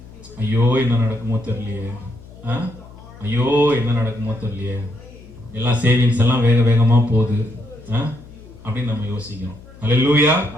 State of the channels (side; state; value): left; noise; hum, 20 dB below the sound